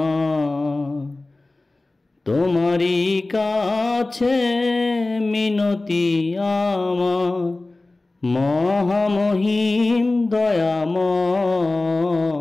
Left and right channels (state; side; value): quieter; right; 3.0 dB